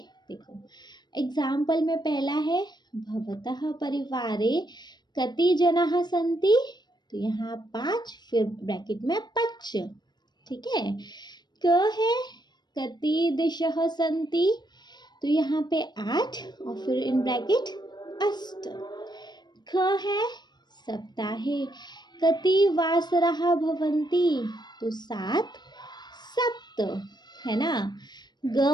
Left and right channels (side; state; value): right; late; 0.21 ms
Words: देखो एग्जाम्पल में पहला है भवतः परिवारे कति जनाः सन्ति। तो यहाँ 5 फिर ब्रैकेट में 5। ठीक है। क है कति दिशः सन्ति। तो यहाँ पे 8 और फिर इन ब्रैकेट अष्ट। ख है सप्ताहे कति वासरः भवन्ति। तो 7 सप्त है ना। ग